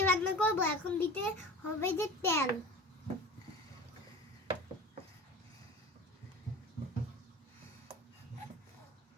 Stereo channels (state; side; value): normal; both; correlation 0.36